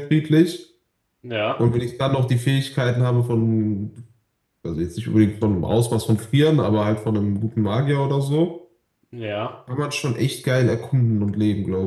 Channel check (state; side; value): identical; both; correlation 1.00